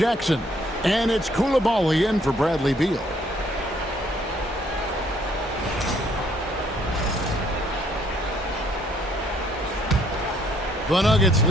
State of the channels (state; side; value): normal; both; correlation 0.66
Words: And it's Coulibaly in for Bradley Beal. The Nuggets